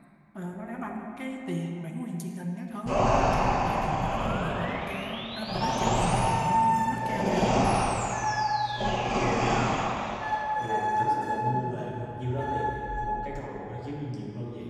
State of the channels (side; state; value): both; identical; correlation 1.00